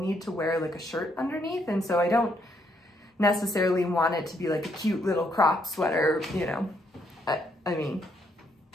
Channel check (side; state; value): both; normal; correlation 0.73